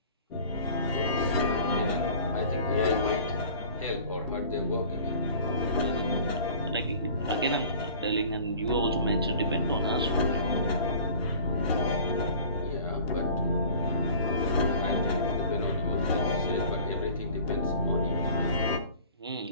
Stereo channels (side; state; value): both; inverted; correlation -0.45